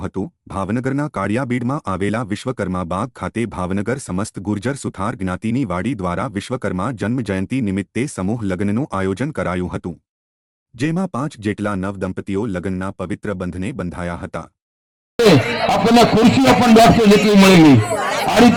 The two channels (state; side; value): identical; both; correlation 1.00